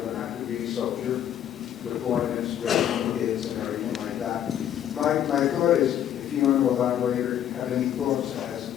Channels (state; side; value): quieter; right; 10.4 dB